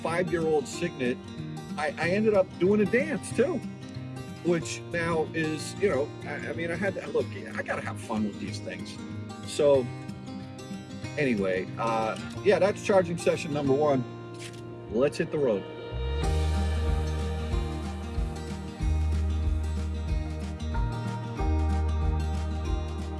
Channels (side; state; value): both; identical; correlation 1.00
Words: Signet, I ended up doing a dance too, which now is, you know, I mean, I had to, look, I got to have fun with these things. So anyway, yeah, that's charging session number 1. Let's hit the road.